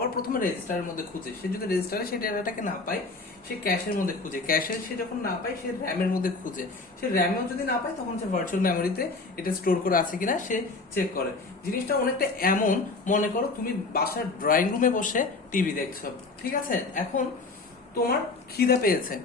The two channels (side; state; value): right; quieter; 3.7 dB